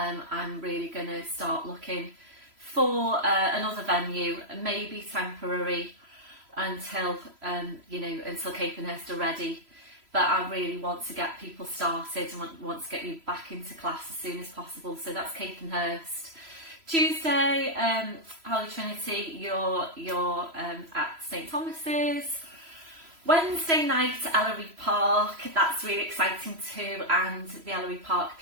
I'm really going to start looking for another venue, maybe temporary until until Capenhurst are ready. But I really want to get people started and want to get you back into class as soon as possible. So that's Capenhurst. Tuesday, Holy Trinity, you're at St Thomas's. Wednesday night, Ellery Park, that's really exciting too, and the Ellery Park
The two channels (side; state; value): left; late; 3.0 ms